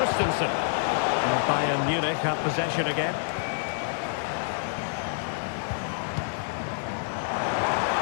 And Bayern Munich have possession again.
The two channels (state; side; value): silent; right; 57 dB below the other